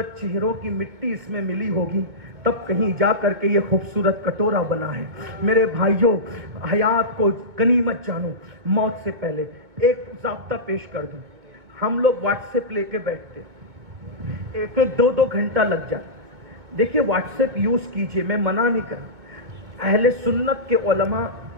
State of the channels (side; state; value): left; late; 2.2 ms